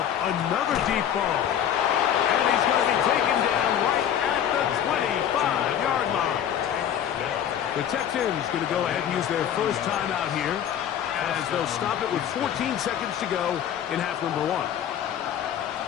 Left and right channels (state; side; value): quieter; right; 9.7 dB